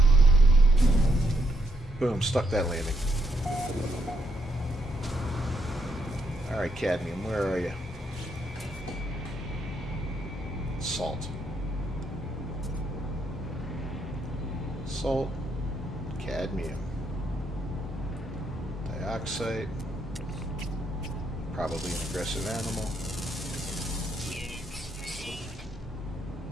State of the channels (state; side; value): normal; both; correlation 0.76